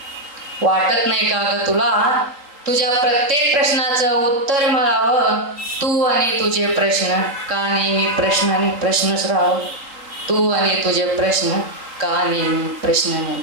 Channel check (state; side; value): late; left; 3.8 ms